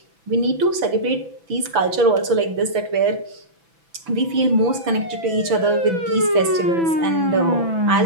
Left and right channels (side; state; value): left; late; 6.0 ms